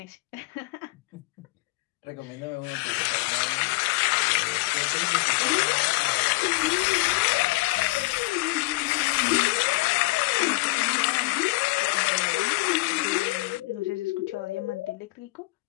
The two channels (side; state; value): right; quieter; 23.6 dB